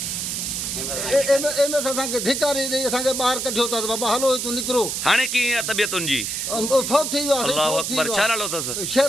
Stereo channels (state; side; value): noise; right; hiss, 2 dB below the sound